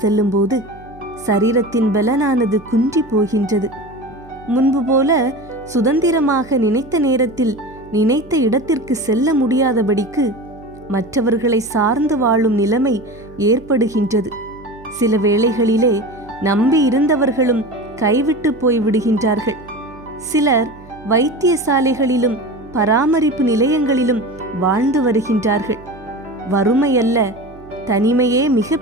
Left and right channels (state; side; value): noise; right; hum, 21 dB below the sound